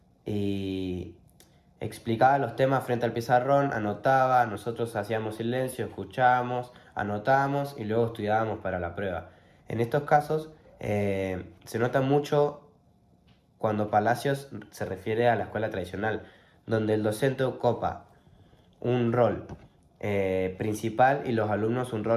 y explicaba los temas frente al pizarrón, anotaba, nosotros hacíamos silencio, escuchábamos, anotábamos y luego estudiábamos para la prueba. En estos casos se nota mucho cuando Palacios se refiere a la escuela tradicional, donde el docente ocupa un rol principal y los alumnos un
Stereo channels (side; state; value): both; identical; correlation 1.00